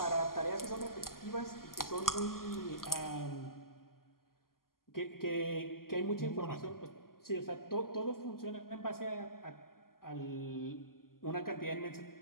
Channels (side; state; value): right; late; 0.92 ms